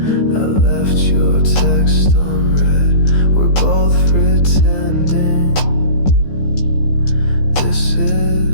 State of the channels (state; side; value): late; right; 15 ms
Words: left your text unread. We're both pretending this